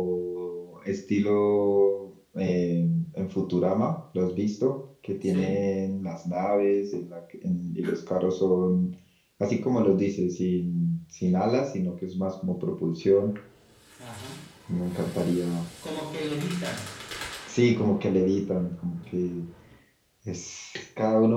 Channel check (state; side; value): identical; both; correlation 1.00